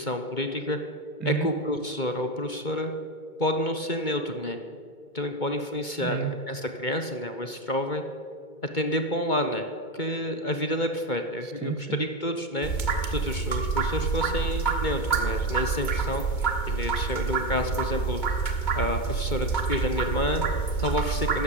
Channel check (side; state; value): right; late; 2.2 ms